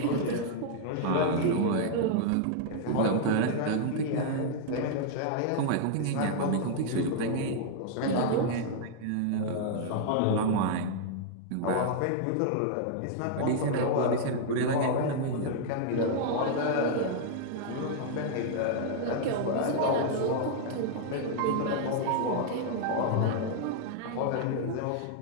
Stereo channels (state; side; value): different; both; correlation -0.01